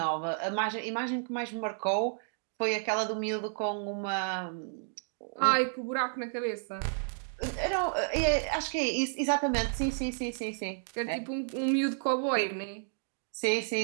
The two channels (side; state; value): left; silent; digital silence